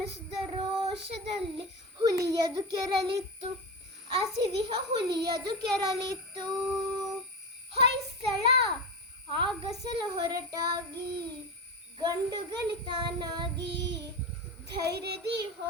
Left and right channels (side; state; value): both; normal; correlation 0.20